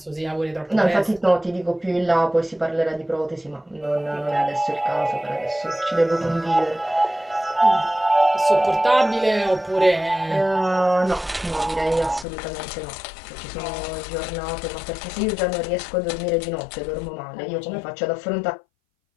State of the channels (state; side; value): drops out; right; at 12.2 s